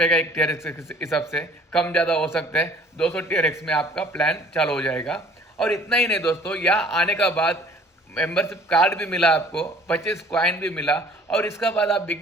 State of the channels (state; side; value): normal; both; correlation 0.53